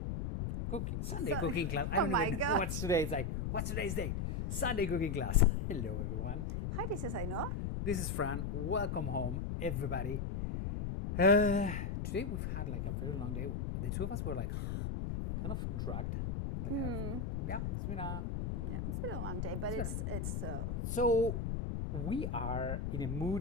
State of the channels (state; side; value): noise; left; rumble, 2 dB below the sound